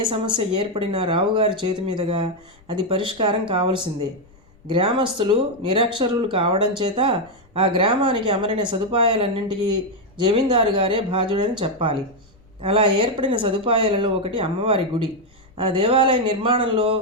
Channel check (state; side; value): noise; left; rumble, 29 dB below the sound